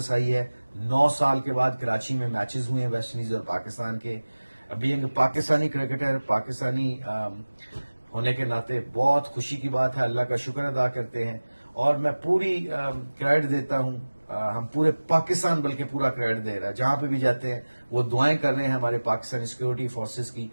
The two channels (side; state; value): both; inverted; correlation -1.00